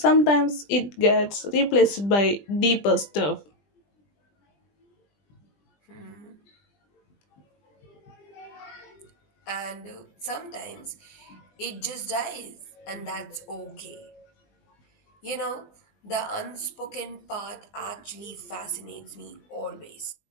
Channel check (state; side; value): late; right; 20 ms